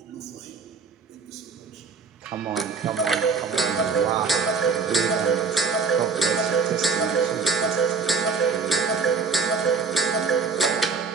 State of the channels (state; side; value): quieter; left; 5.0 dB